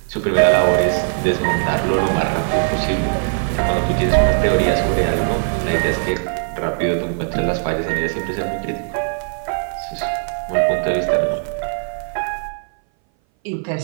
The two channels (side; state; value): left; silent; 60 dB below the other